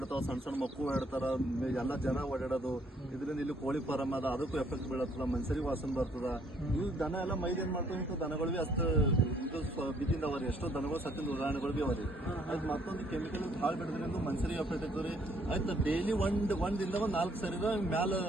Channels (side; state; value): both; normal; correlation 0.65